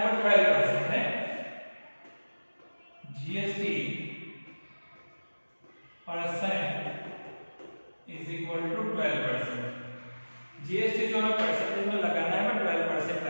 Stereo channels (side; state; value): both; inverted; correlation -1.00